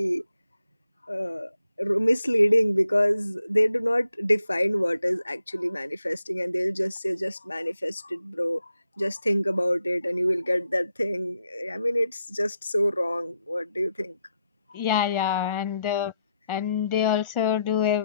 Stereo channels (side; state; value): both; inverted; correlation -0.81